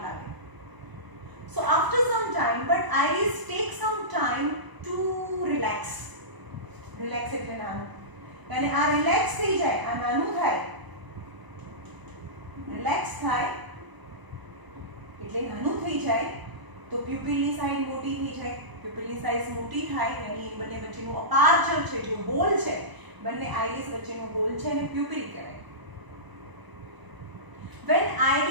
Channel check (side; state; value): left; late; 1.0 ms